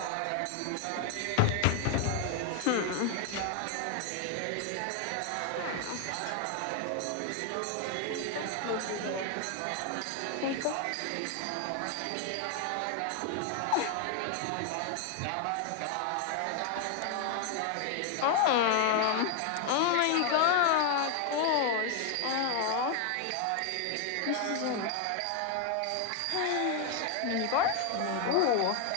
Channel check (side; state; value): both; different; correlation 0.01